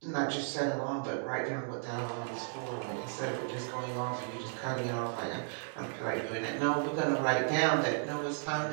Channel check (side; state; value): left; silent; 55 dB below the other